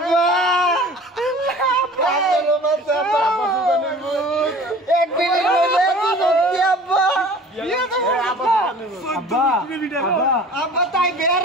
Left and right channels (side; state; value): both; normal; correlation 0.44